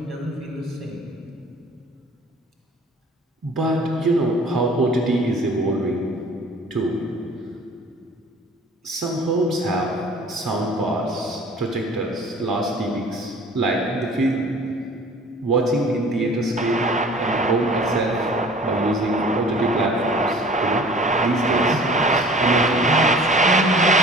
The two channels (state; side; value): normal; both; correlation 0.47